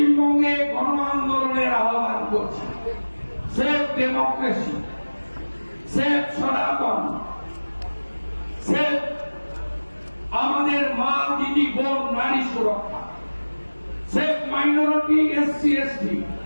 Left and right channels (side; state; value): both; inverted; correlation -1.00